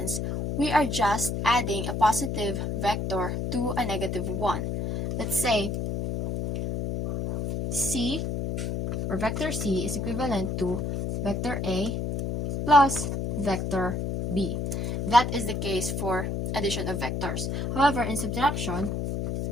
we are just adding a positive vector to a negative one. Let's say C, or vector C, is equivalent to vector A plus vector B. That is the case for addition of vectors. However, in subtraction,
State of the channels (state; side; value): noise; left; hum, 2 dB below the sound